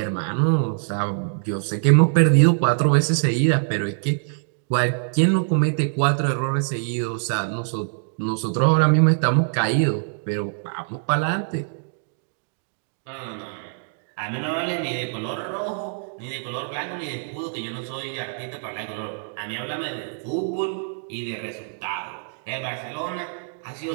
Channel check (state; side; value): silent; left; digital silence